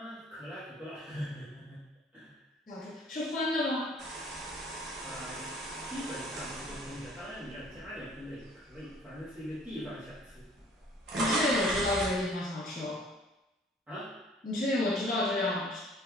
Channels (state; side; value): normal; both; correlation 0.54